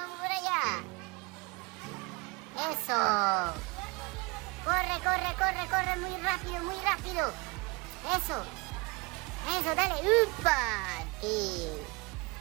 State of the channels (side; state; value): left; quieter; 26.9 dB